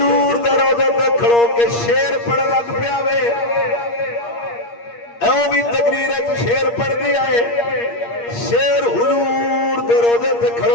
دے روزے تے کھڑو کے شیر پڑھ لگ پیا وے ایوں بھی تقریر ہے شیر پڑھ دیا ہے شیر حضور دے روزے تے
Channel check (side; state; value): right; late; 8.5 ms